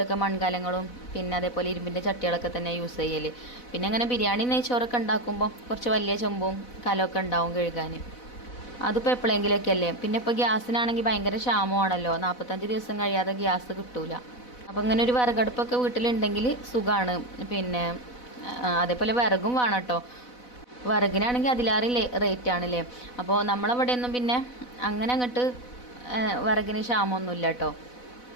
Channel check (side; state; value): right; late; 4.0 ms